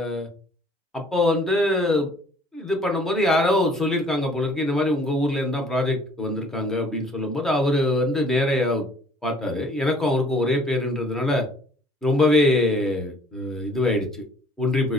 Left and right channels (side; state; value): both; normal; correlation 0.56